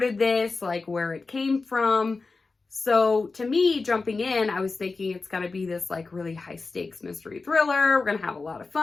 this, like, where it came from. So, to me, jumping in, I was thinking it's going to be this, like, really high-stakes mystery thriller. We're going to have a lot of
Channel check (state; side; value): quieter; right; 4.0 dB